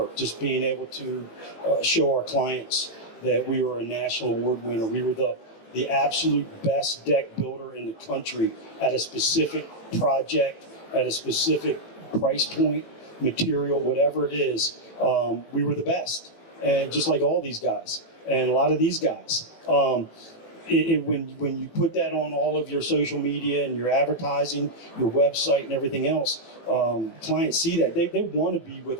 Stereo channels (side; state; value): right; late; 18 ms